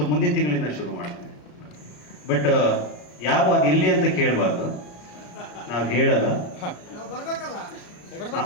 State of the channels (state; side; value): late; right; 34 ms